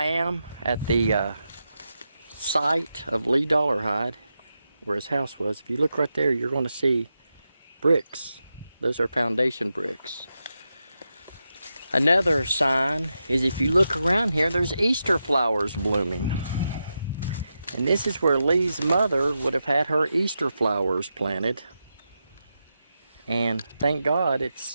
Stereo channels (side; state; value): both; inverted; correlation -0.88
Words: am at the site of Lee Dollarhide, where his house was. If you look right there, you're going to see bricks. Those are foundation bricks. Another sign is if you look around here, there's Easter flowers blooming. And this is where Lee's mother would have had her Easter flowers planted. And thank God